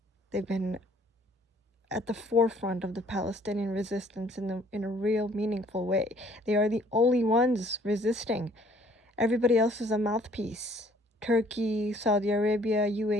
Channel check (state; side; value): normal; both; correlation 0.59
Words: They've been at the forefront of the Palestinian resistance in a real meaningful way. They are the only ones resisting. Everybody else is a mouthpiece. Turkey, Saudi Arabia,